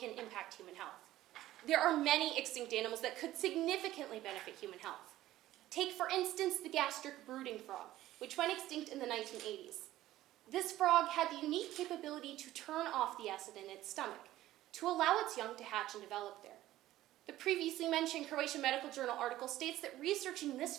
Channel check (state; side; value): quieter; left; 14.8 dB